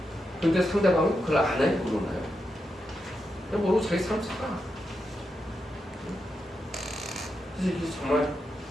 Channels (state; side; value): normal; both; correlation 0.86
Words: 근데 상대방은 그걸 안 해요. 모르나요? 그냥 모르고 자기 삶 살아. 그래서 이게 정말